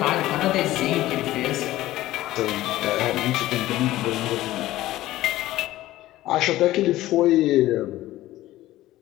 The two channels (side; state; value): right; quieter; 15.8 dB